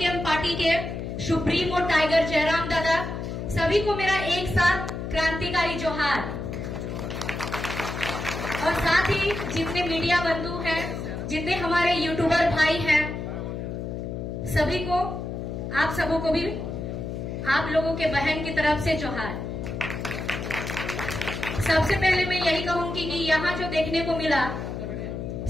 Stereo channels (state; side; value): noise; left; hum, 5 dB below the sound